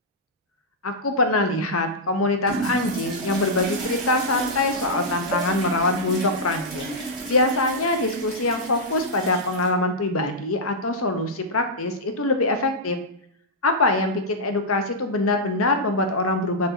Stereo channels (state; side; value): normal; both; correlation -0.08